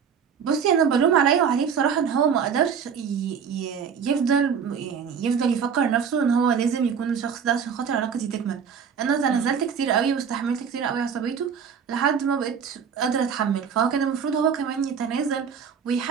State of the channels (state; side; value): quieter; left; 6.9 dB